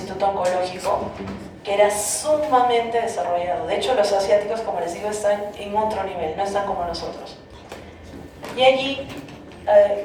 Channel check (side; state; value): both; identical; correlation 1.00